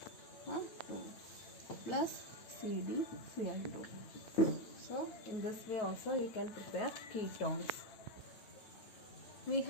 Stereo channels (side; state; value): right; late; 9.0 ms